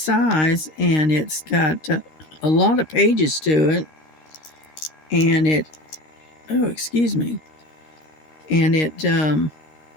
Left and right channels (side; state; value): right; late; 13 ms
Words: and it's got a lot of pages to it, and excuse me, and